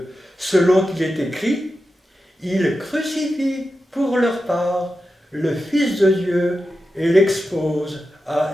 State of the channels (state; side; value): normal; both; correlation 0.91